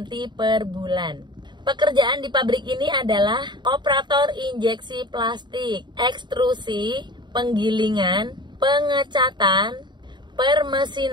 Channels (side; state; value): left; late; 0.22 ms